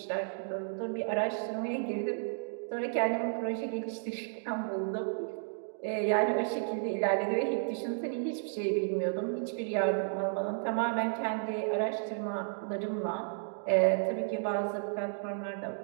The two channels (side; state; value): left; silent; digital silence